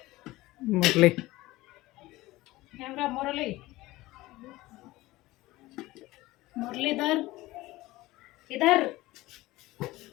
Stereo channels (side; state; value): right; quieter; 18.6 dB